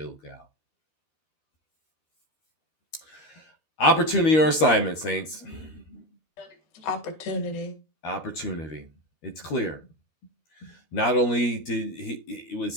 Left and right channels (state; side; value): late; right; 13 ms